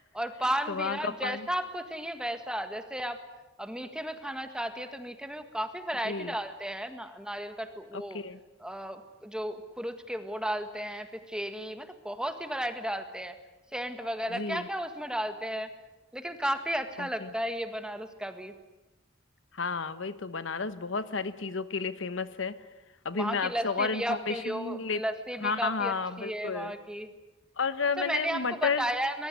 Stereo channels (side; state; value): both; normal; correlation 0.42